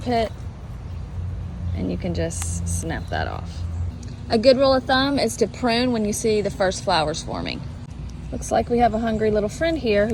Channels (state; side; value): identical; both; correlation 1.00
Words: and you can just snap that off. A good rule of thumb is to prune when you see the first flowers forming. Looks like we have a hungry little friend here